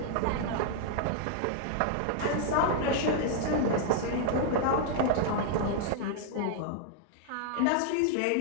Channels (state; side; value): different; both; correlation 0.00